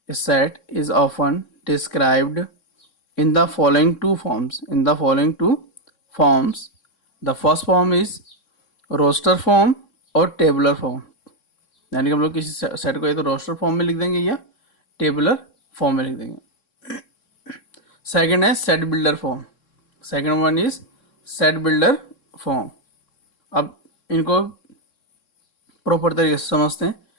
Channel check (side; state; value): right; late; 3.6 ms